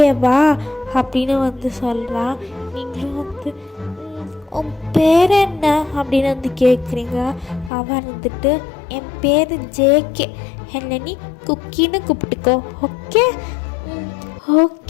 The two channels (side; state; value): right; drops out; at 7.7 s